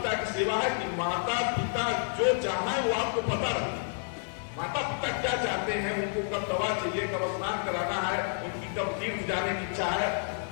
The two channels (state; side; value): silent; right; digital silence